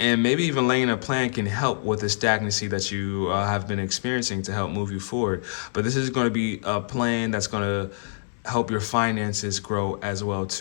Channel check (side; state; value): right; silent; digital silence